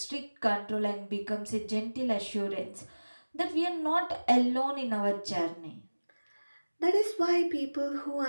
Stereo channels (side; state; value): both; inverted; correlation -1.00